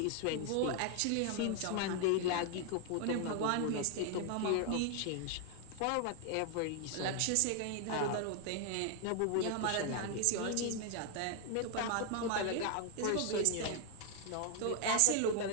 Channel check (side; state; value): both; different; correlation 0.00